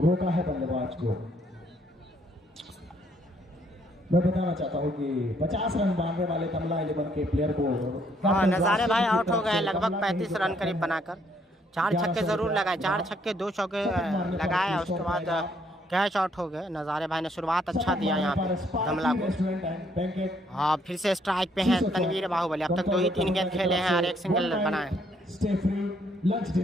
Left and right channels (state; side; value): normal; both; correlation 0.69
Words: है बल्लेबाज को। मैं बताना चाहता हूँ कि 50 रन मारने वाले कमला 11 के प्लेयर को नजारे भाई आउट हो गए लगभग 35 रन करीब बनाकर। 4 छक्के जरूर लगाए, 4 छक्के 2 चौके लगाए, उसके बाद कैच आउट हो गए। नजारे भाई ने शुरुआत अच्छा दिया यहाँ पे धमला को। हाँ, फिर से स्ट्राइक पे हैं तनवीर बाहुबली। अब तक 2 ही 3 गेंद खेले हैं और 1 सिंगल बनाए। स्टे फ्री, लंच